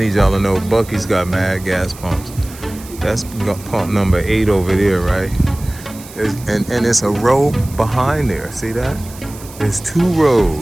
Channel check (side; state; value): right; noise; hiss, 18 dB below the sound